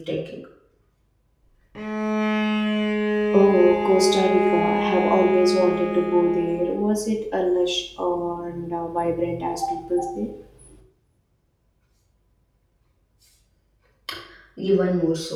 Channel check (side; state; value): both; identical; correlation 1.00